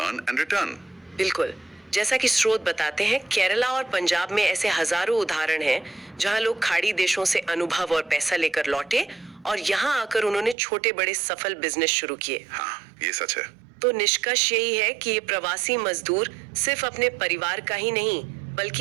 and return. बिल्कुल, जैसा कि स्रोत बताते हैं, केरला और पंजाब में ऐसे हजारों उदाहरण हैं जहां लोग खाड़ी देशों से अनुभव और पैसा लेकर लौटे और यहाँ आकर उन्होंने छोटे बड़े सफल बिजनेस शुरू किए। हाँ, ये सच है। तो निष्कर्ष यही है कि ये प्रवासी मजदूर सिर्फ अपने परिवार का ही नहीं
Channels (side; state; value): left; drops out; at 10.6 s